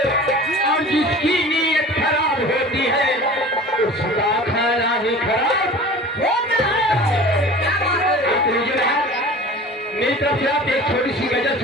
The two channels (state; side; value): normal; both; correlation 0.40